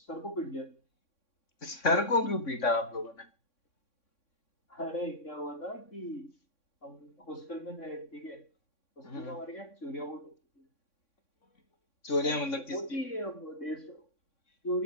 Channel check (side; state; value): right; late; 3.6 ms